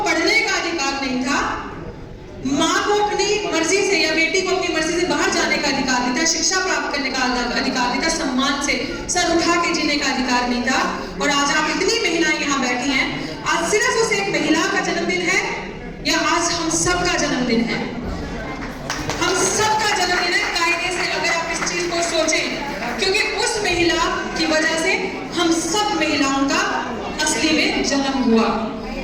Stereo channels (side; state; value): both; identical; correlation 1.00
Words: पढ़ने का अधिकार नहीं था, माँ को अपनी मर्जी से या बेटी को अपनी मर्जी से बाहर जाने का अधिकार नहीं था, शिक्षा प्राप्त करने का अधिकार नहीं था, सम्मान से सर उठा के जीने का अधिकार नहीं था। और आज आप इतनी महिलाएं यहाँ बैठी हैं, आज सिर्फ उस एक महिला का जन्मदिन है या आज हम सबका जन्मदिन है? हम सबका जन्मदिन है कायदे से, अगर आप इस चीज को सोचें, क्योंकि उस महिला की वजह से हम सब महिलाओं का असली में जन्म हुआ।